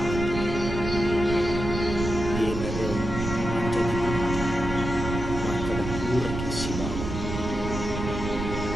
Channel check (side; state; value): right; noise; rumble, 5 dB below the sound